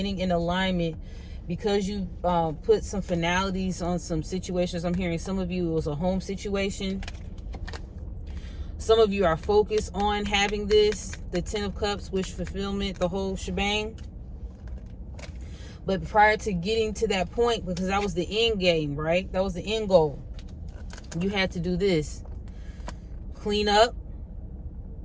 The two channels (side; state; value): both; identical; correlation 1.00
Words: in alignment, because you put some finalities on some situations. I'm hearing some of you, it was a home situation. Some of you are focused on having this, the 10 of Cups, wish fulfillment, the whole shebang. But prior to getting to that point, because that was the end game, right? That was the end goal. You had to do this. Clean up.